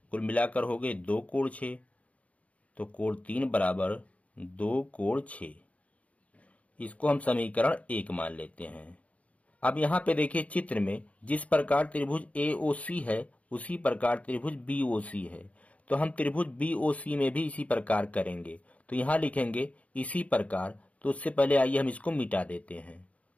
कुल मिलाकर हो गए 2 कोण 6। तो कोण 3 बराबर 2 कोण 6। इसको हम समीकरण 1 मान लेते हैं। अब यहाँ पे देखिए चित्र में जिस प्रकार त्रिभुज AOC है उसी प्रकार त्रिभुज BOC है, तो हम त्रिभुज BOC में भी इसी प्रकार करेंगे। तो यहाँ लिखेंगे इसी प्रकार, तो उससे पहले आइए हम इसको मिटा देते हैं।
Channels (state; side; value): late; right; 0.066 ms